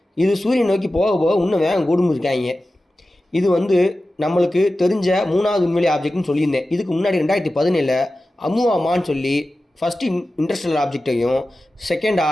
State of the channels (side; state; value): both; normal; correlation 0.94